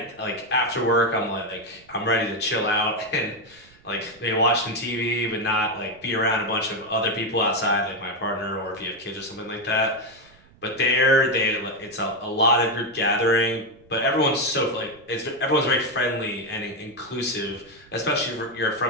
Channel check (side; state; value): right; noise; rumble, 28 dB below the sound